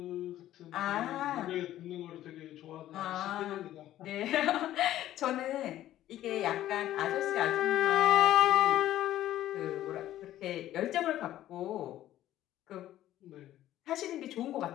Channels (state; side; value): quieter; right; 13.3 dB